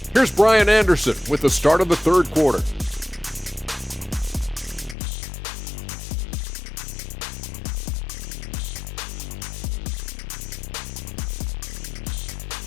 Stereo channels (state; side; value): drops out; right; at 5.0 s